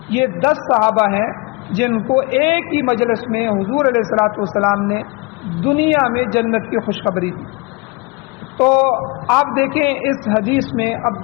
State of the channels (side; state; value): right; quieter; 27.1 dB